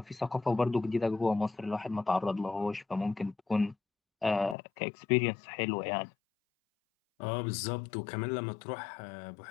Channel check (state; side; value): drops out; right; at 4.5 s